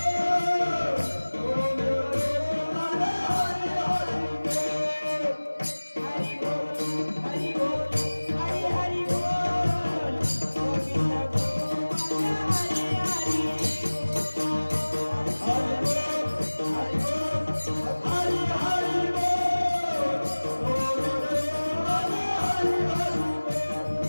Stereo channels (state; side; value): inverted; both; correlation -1.00